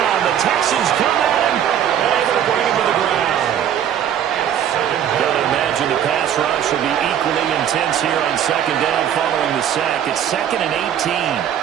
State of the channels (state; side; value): quieter; left; 9.7 dB